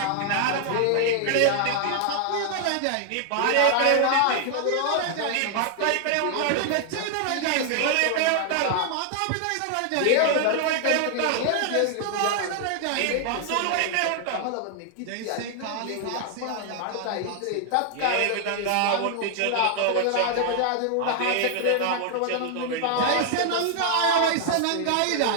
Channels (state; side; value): different; both; correlation 0.00